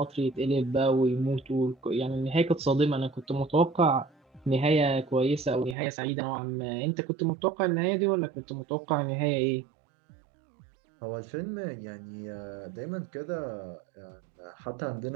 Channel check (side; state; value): left; drops out; at 5.8 s